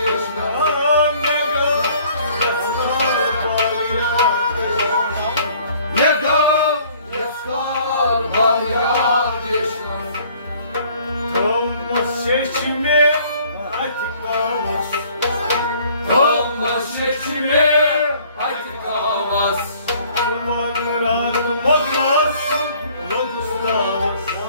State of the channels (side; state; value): both; inverted; correlation -0.57